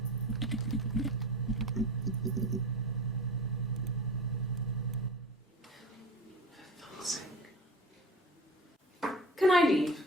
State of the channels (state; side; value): normal; both; correlation 0.34